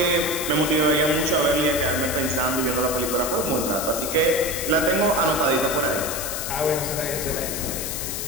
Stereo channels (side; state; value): left; noise; hiss, 4 dB below the sound